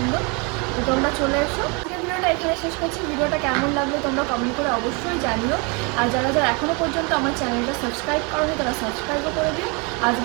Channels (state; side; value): quieter; left; 31.5 dB